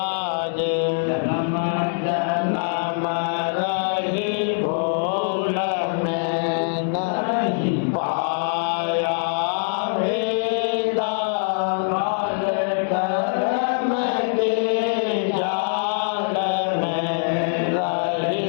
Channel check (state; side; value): silent; right; digital silence